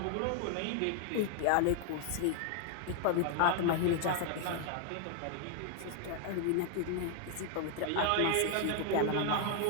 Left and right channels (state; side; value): different; both; correlation 0.00